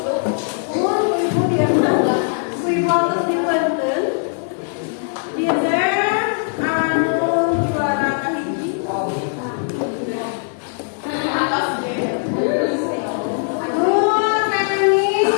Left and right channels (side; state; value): right; silent; 59 dB below the other